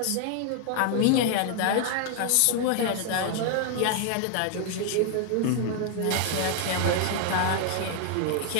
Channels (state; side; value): different; both; correlation 0.00